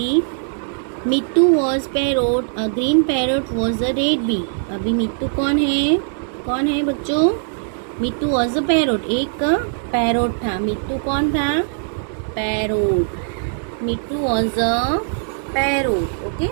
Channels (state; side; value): silent; left; digital silence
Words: Mittu was parrot, a green parrot was a red bee. अभी मिट्टू कौन है बच्चों? मिट्टू वॉज अ पैरोट, एक पैरोट था। मिट्टू कौन था? Parrot. Mittu was a parrot okay.